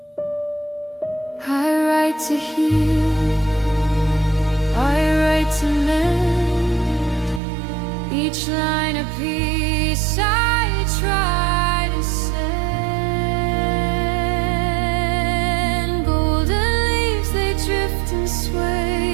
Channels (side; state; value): left; drops out; at 7.4 s